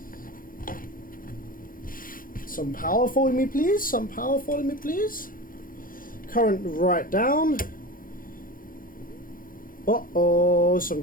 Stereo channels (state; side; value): late; right; 0.40 ms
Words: Some power for me, please. Some power for me, please. Current right down. Uh-oh, some